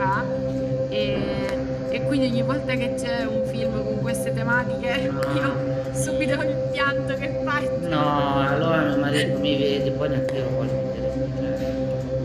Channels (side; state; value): both; identical; correlation 1.00